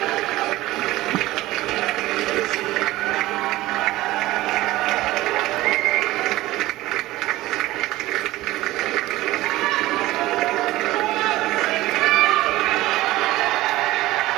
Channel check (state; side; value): quieter; left; 17.4 dB